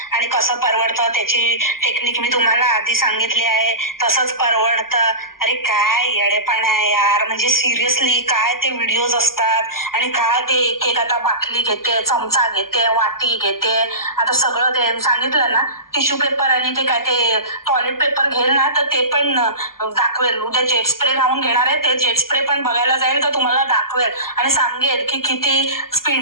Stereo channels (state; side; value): late; right; 0.92 ms